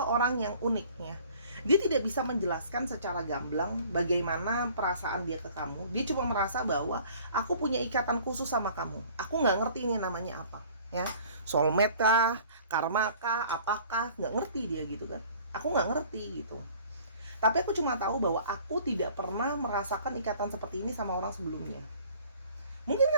orang yang unik ya. Dia tidak bisa menjelaskan secara gamblang bagaimana perasaan dia ke kamu. Dia cuma merasa bahwa aku punya ikatan khusus sama kamu. Aku nggak ngerti ini namanya apa ya, soulmate kah, karma kah, apakah, nggak ngerti dia gitu kan. Aku nggak ngerti gitu. Tapi aku cuma tahu bahwa aku tidak pernah merasakan ikatan seperti ini sama orang sebelumnya. Mungkin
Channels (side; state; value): both; inverted; correlation -0.51